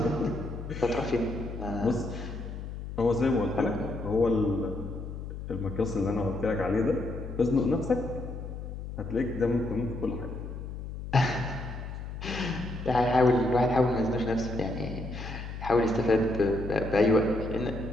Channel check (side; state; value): left; noise; hum, 8 dB below the sound